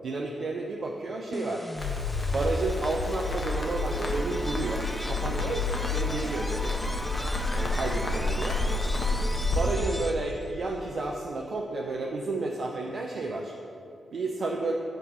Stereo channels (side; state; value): both; normal; correlation 0.76